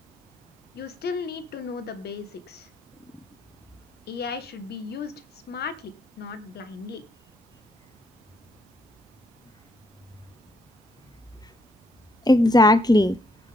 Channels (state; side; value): normal; both; correlation 0.72